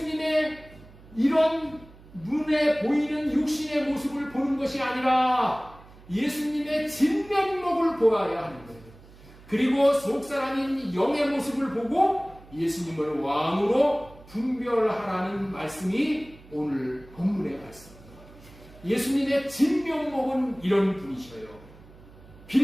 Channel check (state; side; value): noise; right; hum, 22 dB below the sound